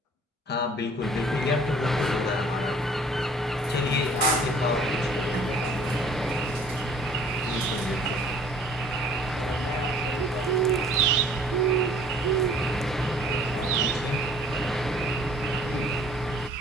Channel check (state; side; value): normal; both; correlation 0.54